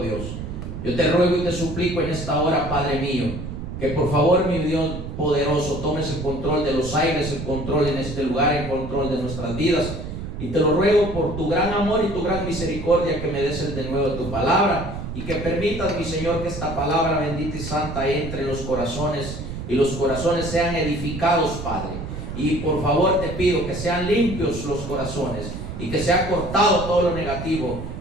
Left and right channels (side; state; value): right; noise; rumble, 7 dB below the sound